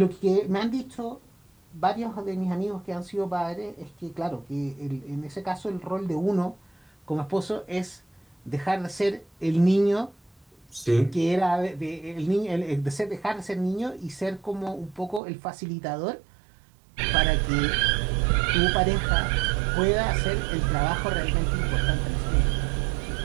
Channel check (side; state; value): left; drops out; at 15.2 s